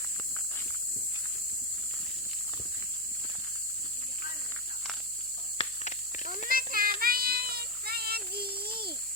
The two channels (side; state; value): left; noise; hum, 28 dB below the sound